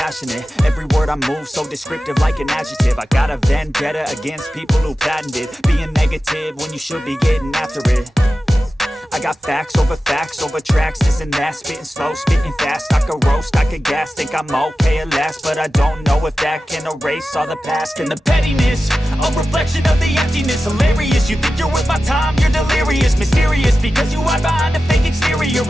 Every word I move so descriptive like an adjective. I got a vendetta against people who patented being negative when you should be getting after it. I got facts over tracks, this and that. Spitting slow, spitting fast. I could roast, I could gas. Think I'm okay at last, but I don't know if that can erase all the past. And the pettiness, a reflection of the emptiness. Hilarious, you think you're worth my time, you're delirious. Mysterious, because you hide behind a fake exterior.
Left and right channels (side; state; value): both; normal; correlation 0.93